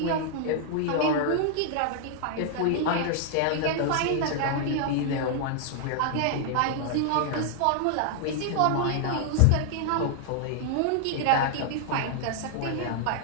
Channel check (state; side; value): different; both; correlation -0.01